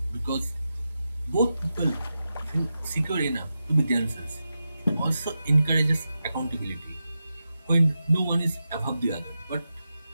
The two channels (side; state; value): both; inverted; correlation -0.90